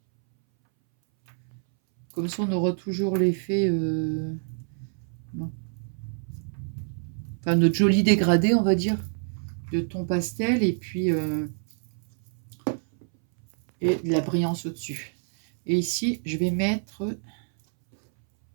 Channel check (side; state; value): left; silent; 61 dB below the other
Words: Comme ça, on aura toujours l'effet... Bon. Enfin, notre joli dégradé, on va dire, de ton pastel, et puis... et de la brillance au-dessus. Et ici, je vais mettre...